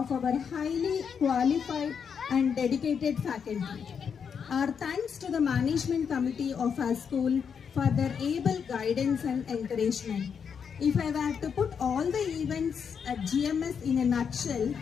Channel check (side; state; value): right; quieter; 6.9 dB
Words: our highly qualified and dedicated faculty. Our thanks to the management committee of our school for their able guidance and encouragement. If I were to put all the events at GMS in a nutshell,